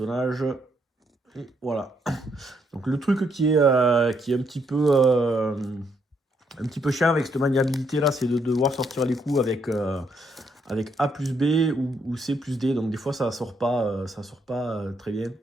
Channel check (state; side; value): normal; both; correlation 0.74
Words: Et voilà. Donc le truc qui est un petit peu chiant avec cette maniabilité là, c'est de devoir sortir les coups avec A plus B ou C plus D. Donc des fois ça sort pas très bien.